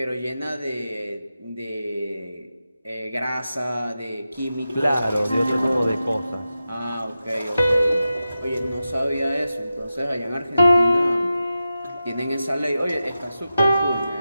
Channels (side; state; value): both; inverted; correlation -0.92